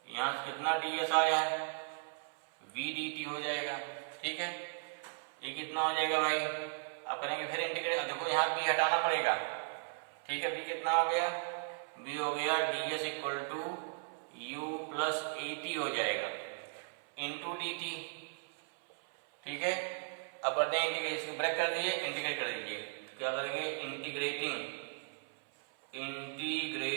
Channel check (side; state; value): left; silent; 53 dB below the other